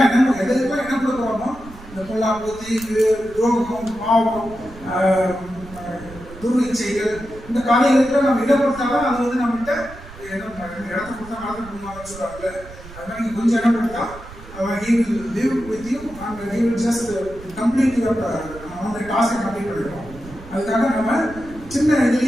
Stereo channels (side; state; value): right; noise; rumble, 17 dB below the sound